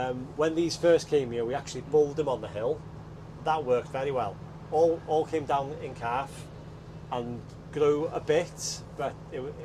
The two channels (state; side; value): identical; both; correlation 1.00